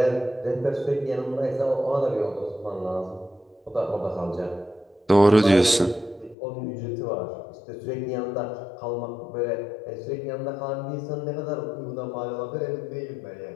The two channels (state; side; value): drops out; right; at 6.4 s